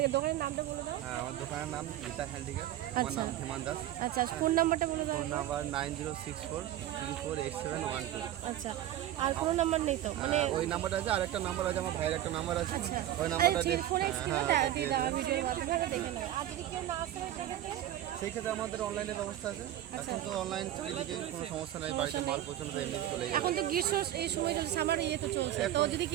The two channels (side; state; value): left; quieter; 12.8 dB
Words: দোকানের নামটা বলে দেন। আমার দোকানের নাম গীতা হ্যান্ডিক্যাপ। আমার নাম হিমান দাস। আচ্ছা, ফোন নাম্বারটা বলে দেন। Phone number 9064348712। আচ্ছা, আর কোনো নাম্বার নেই তো? মানে ওই নাম্বারটা আছে, আরেকটা নাম্বার আছে, আমার ভাইয়ের একটা নাম্বার আছে। ওই নাম্বারটা দিয়ে ভিডিওর মাধ্যমে দেখে নেব। আর যদি কেউ না আসতে পারে সেই ক্ষেত্রে আমাদের অনলাইনের ব্যবস্থা আছে। এখন তো অনলাইন চালিয়ে কোনো সমস্যা নাই, বাড়িতে মাল পৌঁছানো তো এমনি চলে যায়। এখন তো গ্রীষ্ম এই সময় চলছে, আমার ইয়ে তো চলছে, তো যদি